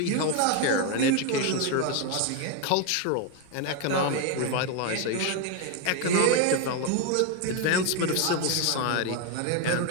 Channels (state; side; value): different; both; correlation 0.01